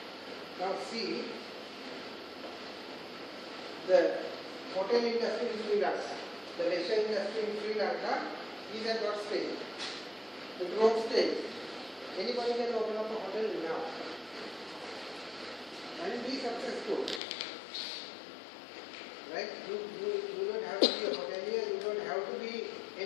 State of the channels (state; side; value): drops out; right; at 17.2 s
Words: Now see, the hotel industry in Sri Lanka, the leisure industry in Sri Lanka is at what stage? The growth stage. Anybody can open up a hotel now and be successful. Right? You don't have to be a hotelier, you don't have to be